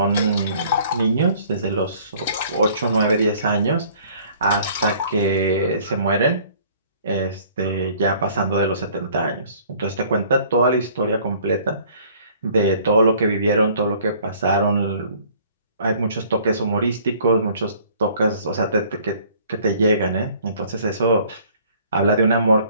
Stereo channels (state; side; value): inverted; both; correlation -0.55